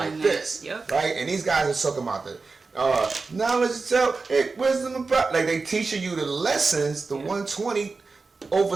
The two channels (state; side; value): quieter; left; 4.2 dB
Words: this, right? And these guys are talking about the knowledge itself, wisdom, and like they teaching you the lessons, the 120 over